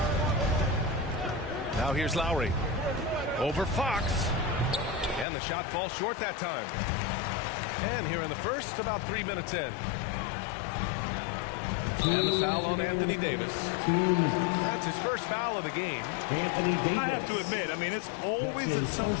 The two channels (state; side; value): drops out; right; at 5.2 s